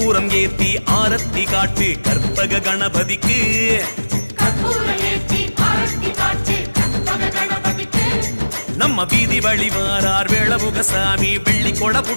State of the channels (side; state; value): both; inverted; correlation -1.00